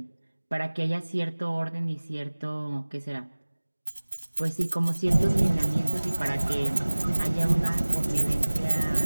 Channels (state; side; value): inverted; both; correlation -1.00